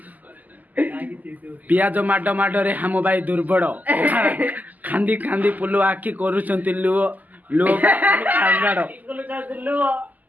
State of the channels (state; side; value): late; left; 0.081 ms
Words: पियाज माड माडरे हम भाई दुर्बल खांदी खांदी पुलु आखि करूछंती लुओ लुओ कांगाड़